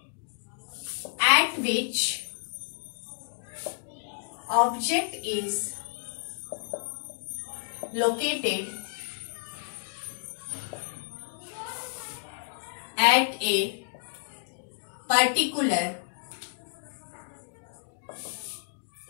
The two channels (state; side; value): silent; right; digital silence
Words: at which object is located at a particular